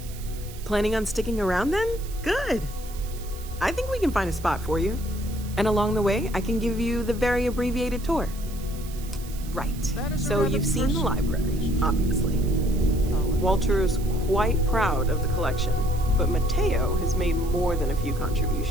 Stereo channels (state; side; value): noise; right; hiss, 17 dB below the sound